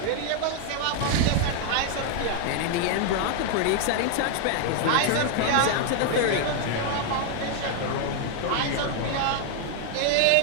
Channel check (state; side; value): different; both; correlation 0.00